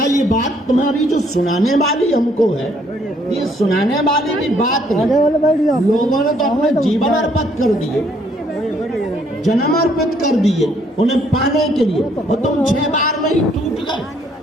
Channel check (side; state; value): both; normal; correlation 0.67